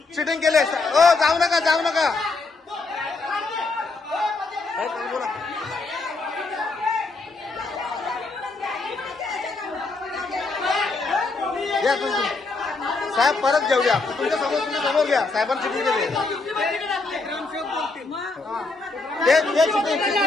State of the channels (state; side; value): quieter; right; 3.7 dB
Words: चिटिंग केले. ओ जाऊ नका, जाऊ नका. बोला घ्या तुम्ही साहेब, परत घेऊया. तुमच्या समोर घ्या. साहेबांनी चिटिंग केली.